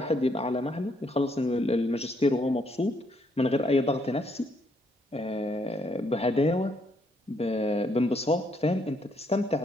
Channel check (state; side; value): normal; both; correlation 0.72